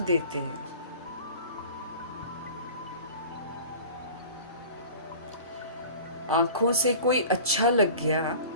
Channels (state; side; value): inverted; both; correlation -0.40